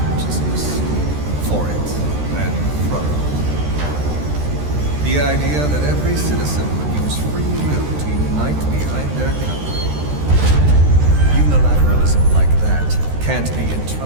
for it and from it. The idea that every citizen would use free will to unite behind their country. Unilateralism like that can't be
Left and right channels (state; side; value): late; left; 13 ms